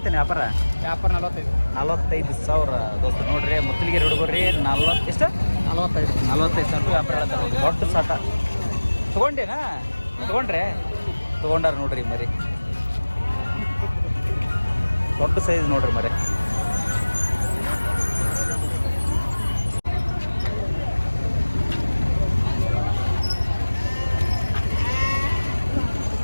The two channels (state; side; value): inverted; both; correlation -1.00